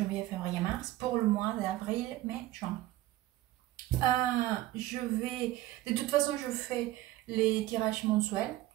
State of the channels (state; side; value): quieter; left; 15.8 dB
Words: février, mars pour le mois d'avril, mai, juin. De toute façon, je fais les tirages mensuels,